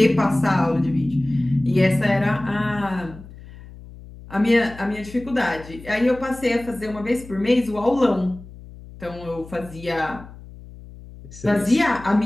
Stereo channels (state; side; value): noise; left; hum, 17 dB below the sound